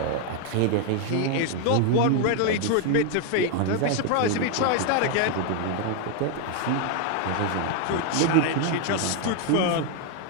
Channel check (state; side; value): different; both; correlation 0.01